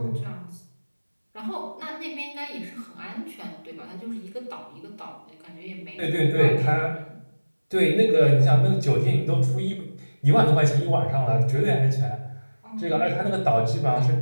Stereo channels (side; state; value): both; inverted; correlation -1.00